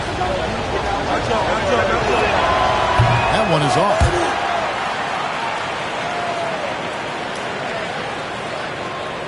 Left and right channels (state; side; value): identical; both; correlation 1.00